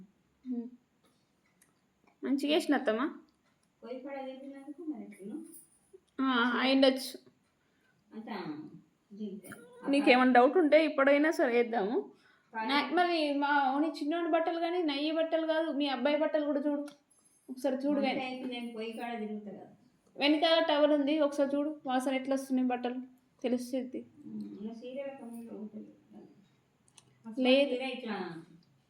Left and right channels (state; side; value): identical; both; correlation 1.00